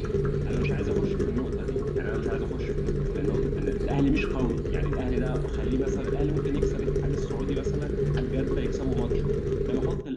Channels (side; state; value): both; identical; correlation 1.00